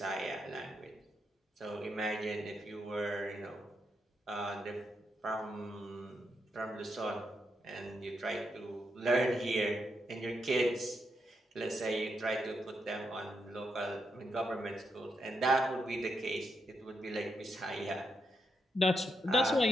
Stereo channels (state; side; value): normal; both; correlation 0.82